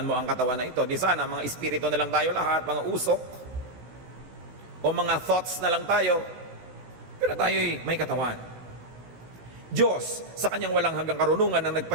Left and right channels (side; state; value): left; late; 16 ms